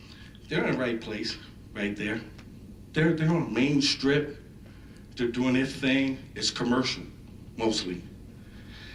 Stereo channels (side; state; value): both; identical; correlation 1.00